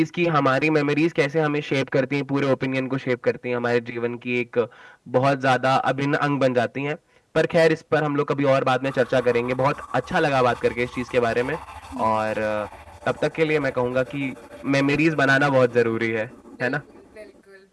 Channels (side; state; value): both; identical; correlation 1.00